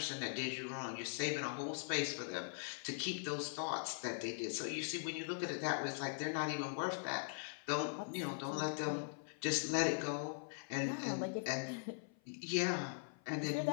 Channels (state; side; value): silent; right; 50 dB below the other